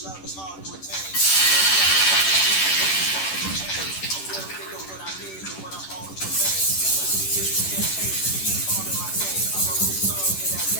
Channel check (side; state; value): right; late; 10 ms